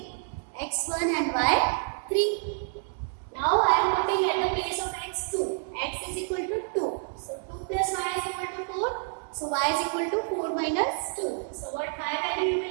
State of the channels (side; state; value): left; silent; digital silence